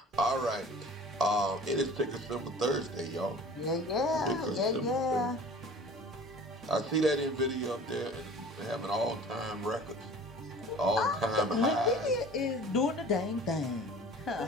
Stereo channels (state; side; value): normal; both; correlation 0.43